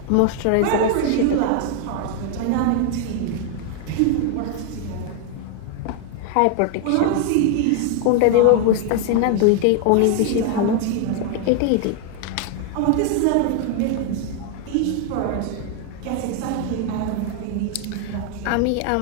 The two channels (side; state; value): both; different; correlation 0.00